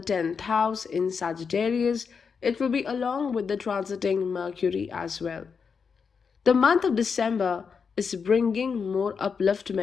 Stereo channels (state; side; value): quieter; right; 5.9 dB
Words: house in Sagittarius. It will be along with the transiting Mercury as well. The month of December is bringing more